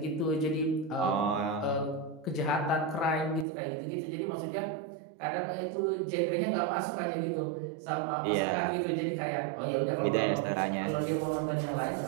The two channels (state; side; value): drops out; left; at 3.5 s